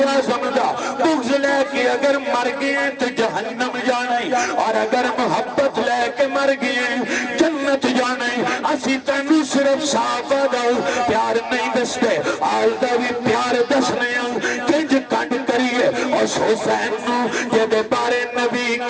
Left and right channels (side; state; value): both; identical; correlation 1.00